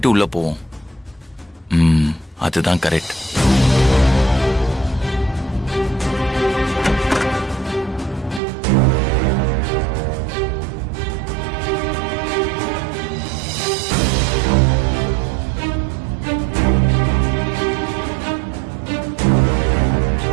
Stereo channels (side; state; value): left; drops out; at 8.4 s